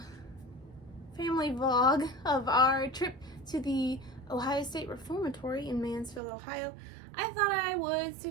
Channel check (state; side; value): drops out; left; at 6.2 s